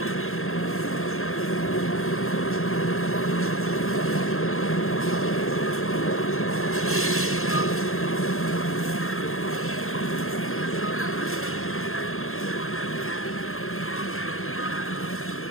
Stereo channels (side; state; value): right; late; 0.61 ms